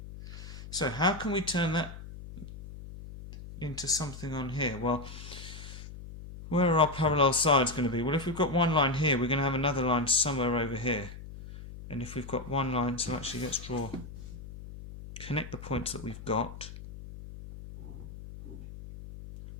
So how can we turn that into something on here? Well, where are our parallel sides going to be? Well, if we've got one line here, we're going to have another line somewhere over here. And if we've got one line, so actually let's connect the points that we've got.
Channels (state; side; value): noise; left; hum, 13 dB below the sound